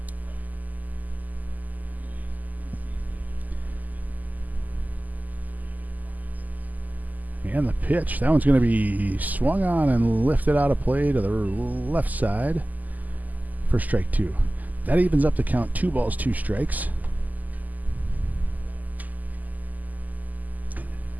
And the pitch, that one's going to be swung on and lifted out of play to the left side for strike 2. That evens up the count, 2 balls, 2 strikes.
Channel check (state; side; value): late; left; 0.081 ms